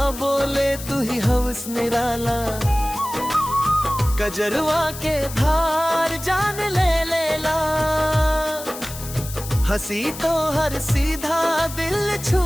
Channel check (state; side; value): noise; left; hiss, 12 dB below the sound